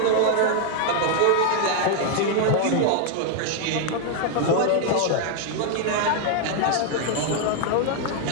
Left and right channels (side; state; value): both; different; correlation 0.00